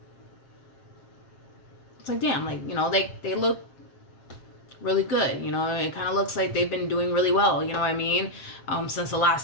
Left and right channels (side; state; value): right; late; 7.5 ms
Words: It's like, damn, like, they look really good. It kind of looks like they've been doing really well. You know what I mean? Since the